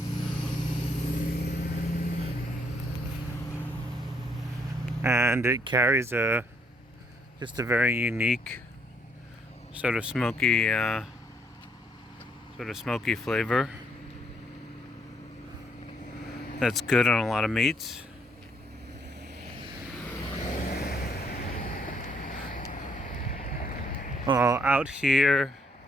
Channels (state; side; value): normal; both; correlation 0.68